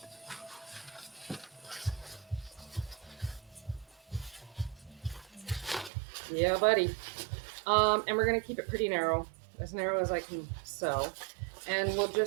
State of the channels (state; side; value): drops out; left; at 5.9 s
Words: Yeah, buddy. And we're gonna keep it pretty narrow as I can sew. And we'll